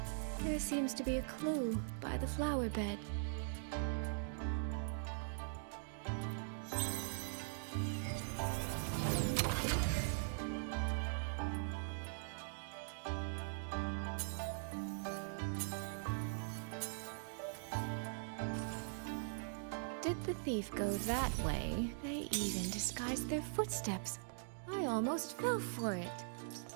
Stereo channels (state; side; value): silent; left; digital silence